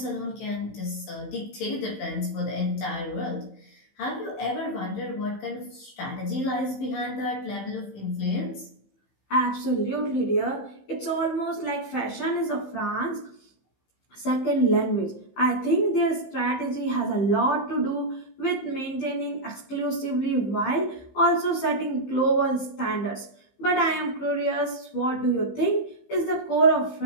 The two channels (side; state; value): right; late; 15 ms